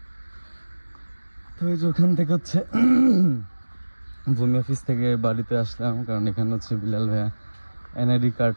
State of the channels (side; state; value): both; inverted; correlation -1.00